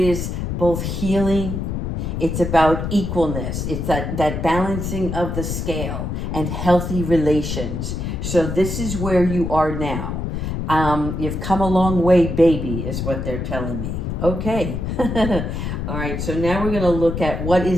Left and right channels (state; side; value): noise; left; rumble, 3 dB below the sound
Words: both healing. It's about equalness. It's that balancing of the scale and healthy relations. So this is where you are now. You've come a long way, baby, is what they're telling me. Okay. All right. So now we're going to look at what